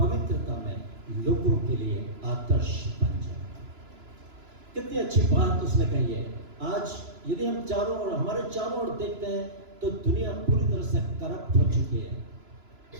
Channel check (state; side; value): late; left; 3.0 ms